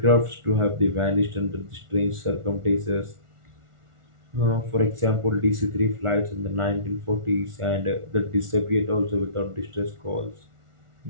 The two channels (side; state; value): left; late; 1.4 ms